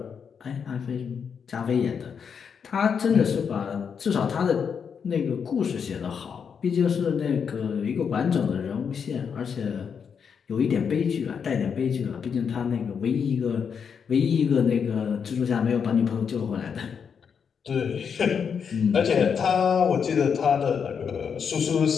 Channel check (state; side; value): quieter; right; 6.7 dB